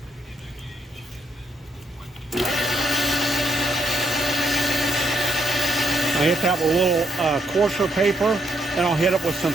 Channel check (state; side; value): normal; both; correlation 0.76